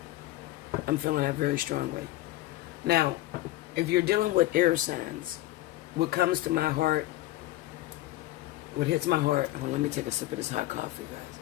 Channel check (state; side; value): quieter; right; 16.4 dB